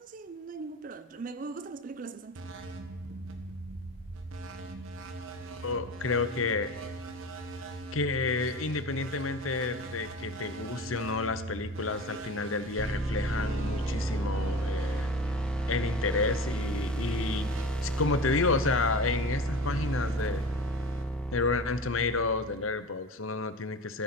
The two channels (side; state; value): both; normal; correlation 0.33